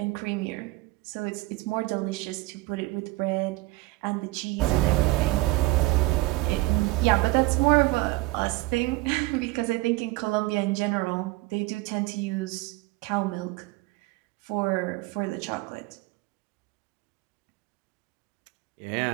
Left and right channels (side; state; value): left; quieter; 20.4 dB